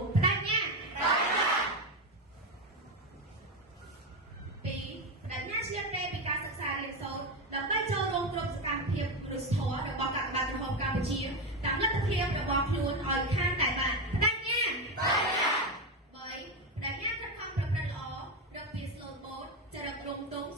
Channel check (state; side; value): normal; both; correlation 0.13